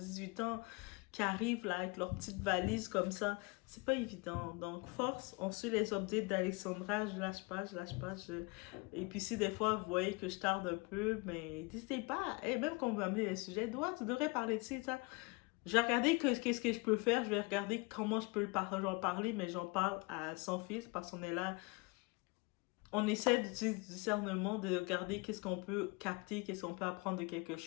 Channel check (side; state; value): right; quieter; 27.3 dB